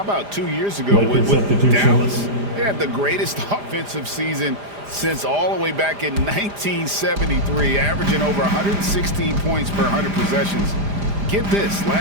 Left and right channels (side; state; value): left; late; 4.9 ms